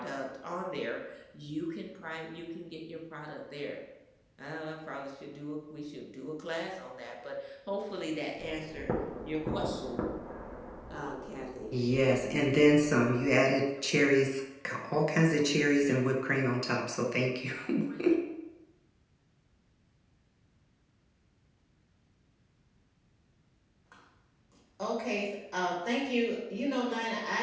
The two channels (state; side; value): identical; both; correlation 1.00